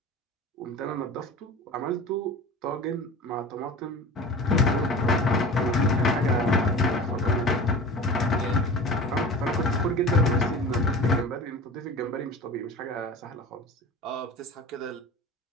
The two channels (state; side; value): normal; both; correlation 0.36